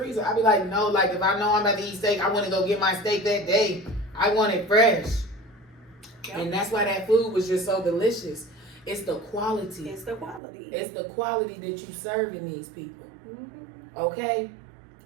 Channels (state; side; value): drops out; left; at 10.4 s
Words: I be like, no, like if I know I'm about to eat steak, I want to go get my steak that day. I want it fresh. Yep. And that's why that food was just so delicious. It's the quality. It's the quality. It's the quality that you serving these people. Mm-hmm. Okay?